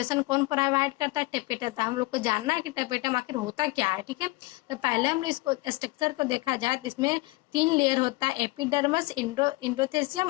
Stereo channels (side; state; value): right; quieter; 22.5 dB